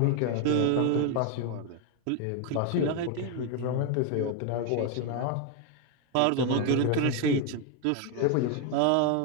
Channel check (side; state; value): both; different; correlation 0.01